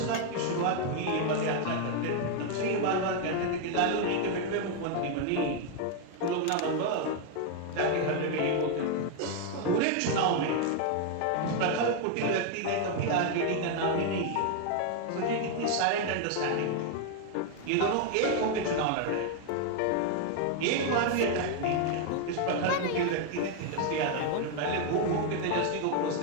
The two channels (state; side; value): different; both; correlation 0.00